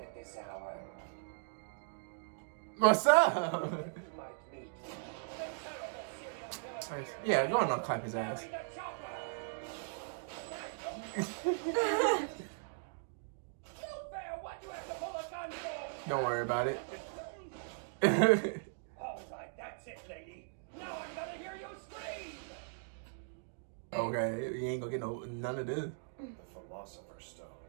this hour. What's up? You might meet the terrible serial killer. Yeah, go on and clap his ass. What you have to pull a gun for? Don't worry about it. All right, that's it, lady. Now I'm gonna hear you scream. Okay, you ain't gonna get none of this. The Philosopher's Stone.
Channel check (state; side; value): silent; left; digital silence